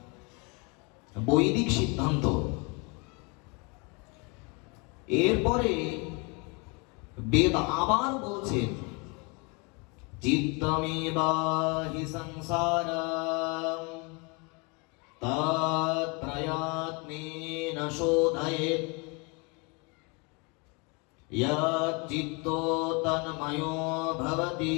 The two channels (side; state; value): right; quieter; 30.9 dB